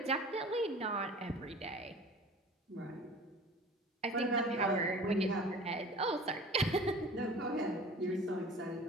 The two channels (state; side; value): normal; both; correlation 0.42